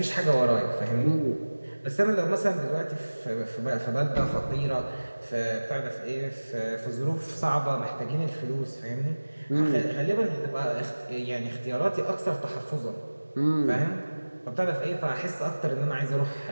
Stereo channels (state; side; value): inverted; both; correlation -1.00